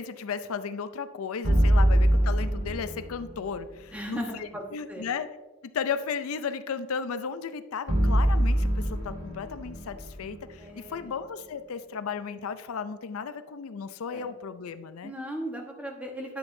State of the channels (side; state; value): both; normal; correlation 0.72